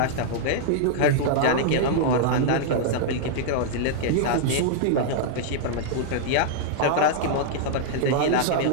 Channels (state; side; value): different; both; correlation -0.01